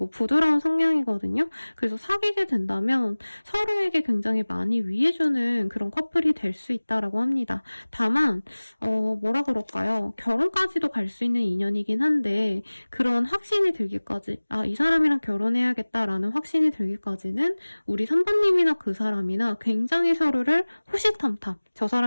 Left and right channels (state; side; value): inverted; both; correlation -1.00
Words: 부드러운 성향이거든요. 그래서 사귀게 된다면 서로에게 굉장히 많이 위해주는 그런 커플이 될 수 있다라고 합니다. 다만 뭐라 그럴까요? 결혼까지도 갈 수 있는 인연이긴 한데 그런 확신이 들기까지, 이 사람이랑 결혼해야겠다라는 확신이 들기까지는 우리 3번님이나 그 사람이나 굉장히 서로를 호시탐탐, 저